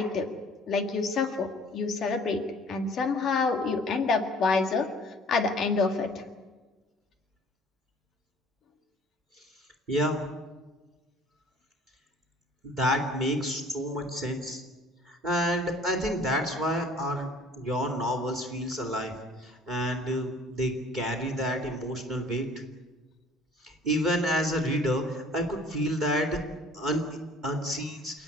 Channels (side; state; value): both; normal; correlation 0.52